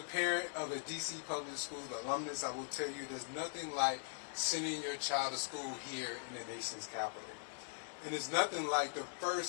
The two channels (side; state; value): right; silent; digital silence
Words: of a DC Public School alumnus, I will tell you there's nothing like sending your child to school here in the nation's capital. And it's nothing like the